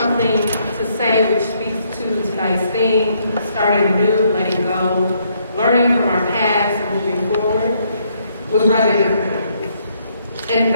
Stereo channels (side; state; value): both; inverted; correlation -0.71